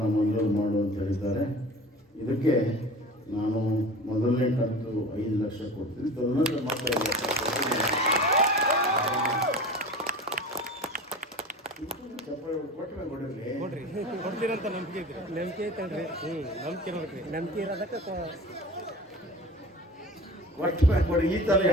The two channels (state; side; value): normal; both; correlation 0.37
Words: ಮಂಜೂರು ಮಾಡು ಅಂತ ಹೇಳಿದ್ದಾರೆ. ಇದಕ್ಕೆ ನಾನು ಮೊದಲನೇ ಕಂತು 5 ಲಕ್ಷ ಕೊಡ್ತೀನಿ. ತದನಂತರ ಮತ್ತೆ 5 ಲಕ್ಷ ಕೊಡ್ತೀರಂತ ನಂಬಿಕೆ ಐತ್ರಿ. ನಂಬಿಕೆ ಐತಲ್ರಿ. ನಂಬಿಕೆ ಇರ್ಬೇಕ್ರಿ. ನಂಬಿಕೆ ಇರೋದಕ್ಕೆ ಕೊಟ್ಟ ಮ್ಯಾಗ ಕೊಡಿ. ಈ ಥರ